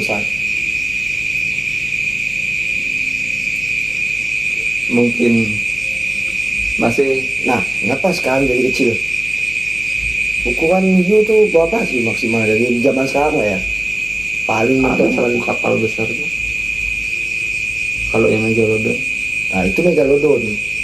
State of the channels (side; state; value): left; noise; hum, 20 dB below the sound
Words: besar. Mungkin masih. Nah, kenapa sekarang jadi kecil? Ukuran hiu tuh berapa sih maksimal dari zaman sekarang lah ya? Paling Ada mentok satu kapal besar tuh. Kalau yang Megalodon. Nah itu Megalodon.